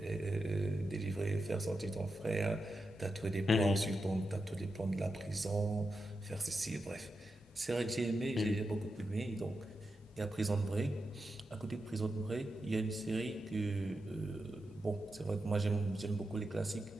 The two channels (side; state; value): both; normal; correlation 0.88